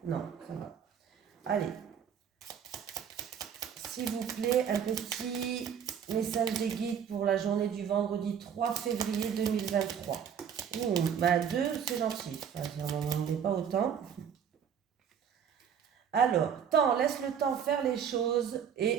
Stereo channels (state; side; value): quieter; left; 7.9 dB